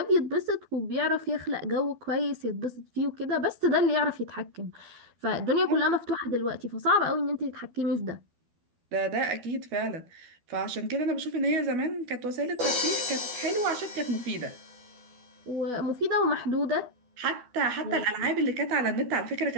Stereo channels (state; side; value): late; left; 12 ms